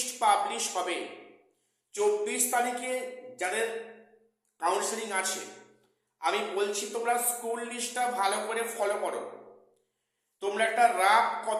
পাবলিশ হবে, 24 তারিখে যাদের কাউন্সেলিং আছে আমি বলছি তোমরা স্কুল লিস্টটা ভালো করে ফলো করো, তোমরা একটা রাফ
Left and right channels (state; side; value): identical; both; correlation 1.00